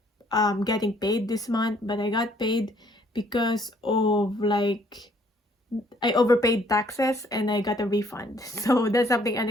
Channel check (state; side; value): normal; both; correlation 0.63